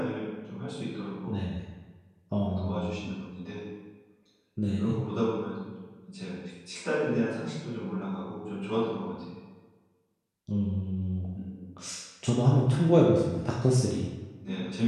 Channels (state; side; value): identical; both; correlation 1.00